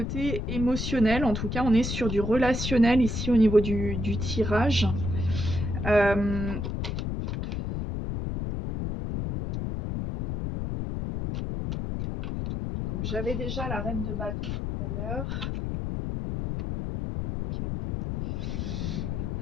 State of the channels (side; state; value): left; noise; rumble, 3 dB below the sound